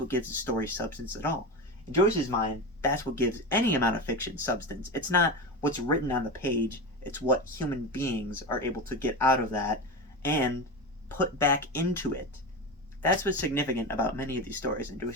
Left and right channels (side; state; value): both; normal; correlation 0.22